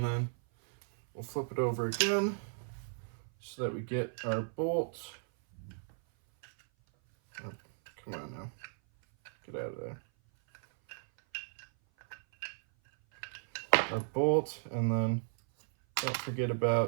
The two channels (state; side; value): silent; left; 55 dB below the other